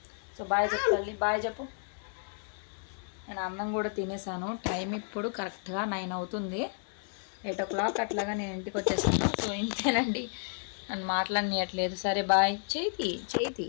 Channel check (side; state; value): right; silent; 57 dB below the other